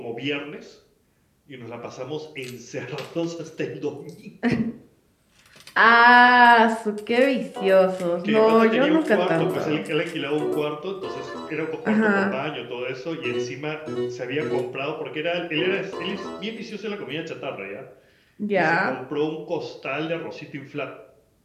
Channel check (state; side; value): identical; both; correlation 1.00